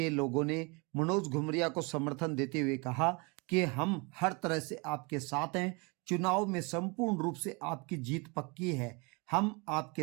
लोगों ने मनोज घुमरिया को समर्थन देते हुए कहा कि हम हर तरह से आपके साथ हैं, चुनाव में संपूर्ण रूप से आपकी जीत पक्की है, हम आपके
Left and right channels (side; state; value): left; quieter; 29.6 dB